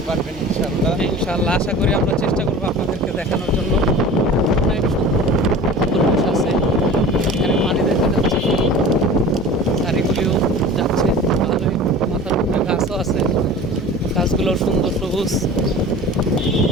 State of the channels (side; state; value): both; normal; correlation 0.39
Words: পারবেন ইনশাআল্লাহ। ইনশাআল্লাহ আশা করি আমরা চেষ্টা করবো আপনাদেরকে দেখানোর জন্য। অনেক সুন্দর পরিবেশ আছে, এখানে পানি দেখা যাচ্ছে, গাড়িগুলিও যাচ্ছে ভালোই, মাথার উপরে গাছও আছে, গাছগুলো সুন্দর সবুজ,